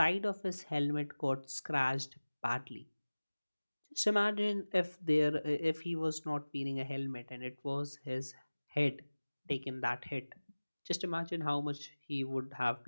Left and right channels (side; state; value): both; inverted; correlation -1.00